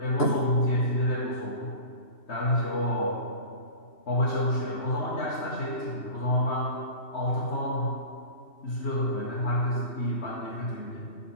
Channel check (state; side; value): late; right; 2.9 ms